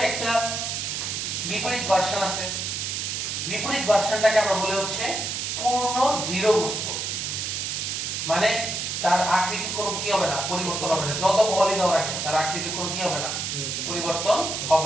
একটা বিপরীত ভার্সন আছে। বিপরীত ভার্সনটাকে আমরা বলি হচ্ছে পূর্ণ দৃঢ় বস্তু। মানে তার আকৃতির কোনো কি হবে না, পরিবর্তন হবে না, যত বলই দাও না কেন তার আকৃতির কোনো কি হবে না, পরিবর্তন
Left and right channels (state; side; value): noise; right; hiss, 2 dB below the sound